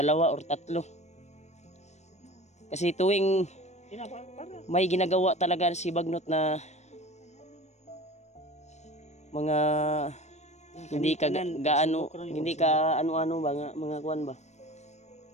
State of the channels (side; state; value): right; late; 0.33 ms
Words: or tatlo. Kasi tuwing may ginagawa talaga si Bagnot na mga hindi ka gaano, hindi ka ano-ano ba, mga kuan ba.